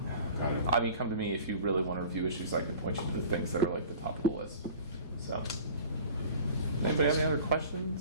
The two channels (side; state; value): both; inverted; correlation -0.44